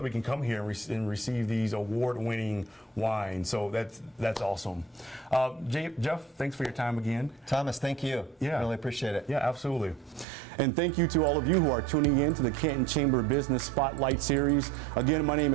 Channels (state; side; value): drops out; left; at 10.2 s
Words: we can come here and receive these award-winning wines. So that's awesome. Jeff, thanks for your time again. Thomas, thank you. Yeah, really appreciate it. Yeah, absolutely. And thank you to all of you who are tuning in to the Canton Chamber Business Spotlight Series. Again, my name